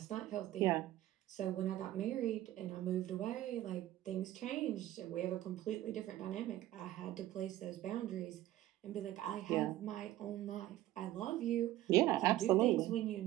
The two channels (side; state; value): left; quieter; 14.7 dB